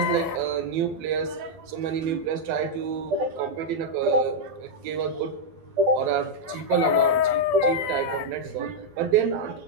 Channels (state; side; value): late; left; 12 ms